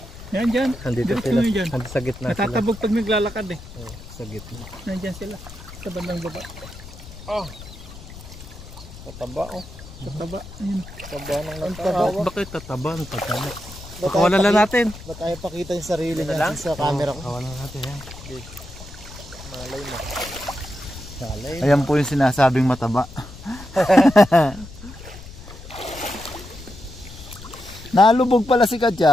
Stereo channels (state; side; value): noise; left; rumble, 15 dB below the sound